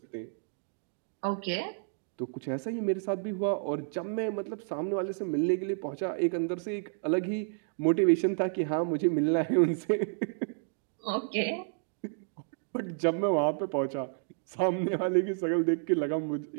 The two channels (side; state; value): left; silent; digital silence